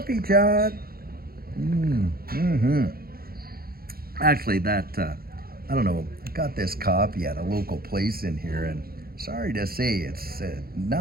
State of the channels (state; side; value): late; left; 0.44 ms